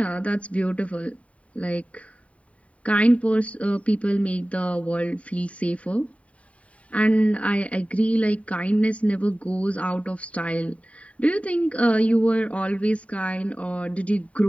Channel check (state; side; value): late; right; 0.066 ms